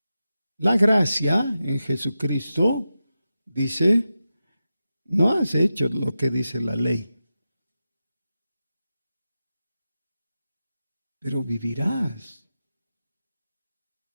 La gracia en Jesucristo dice, no has hecho lo que dice la ley, pero vivirás.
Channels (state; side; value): inverted; both; correlation -0.92